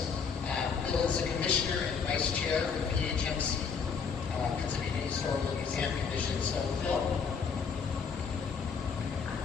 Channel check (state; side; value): quieter; right; 5.9 dB